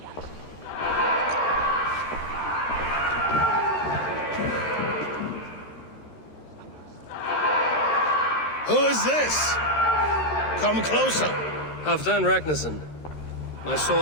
Who is this? Come closer. Halfdan Ragnarsson. My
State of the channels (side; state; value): right; late; 13 ms